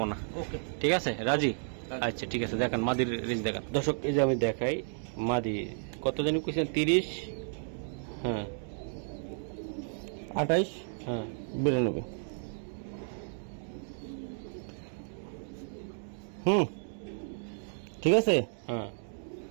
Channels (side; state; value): left; silent; digital silence